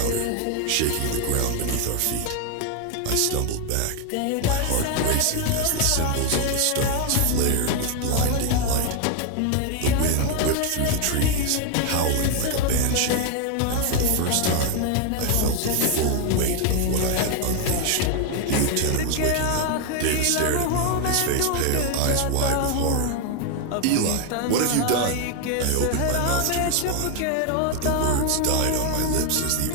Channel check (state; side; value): different; both; correlation 0.01